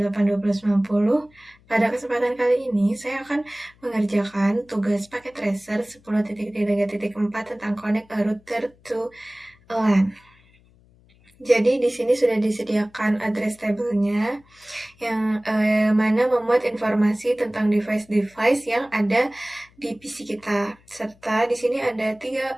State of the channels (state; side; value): noise; left; hum, 30 dB below the sound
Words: Pada kesempatan kali ini, saya akan mengerjakan tugas paket tracer 10.3.4 tentang connect a router to a LAN. Jadi di sini sudah disediakan address table-nya yang mana memuat informasi tentang device-device yang ada di PC kita. Serta di sini ada